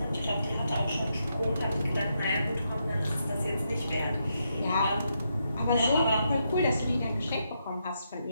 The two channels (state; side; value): inverted; both; correlation -0.81